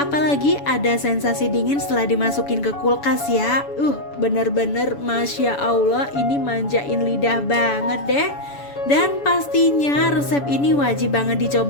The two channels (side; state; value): right; late; 7.0 ms